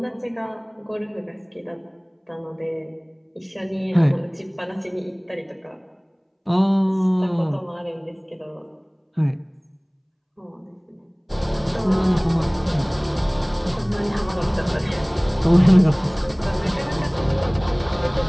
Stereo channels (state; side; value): identical; both; correlation 1.00